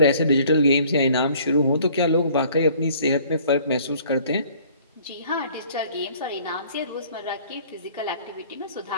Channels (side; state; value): both; inverted; correlation -0.55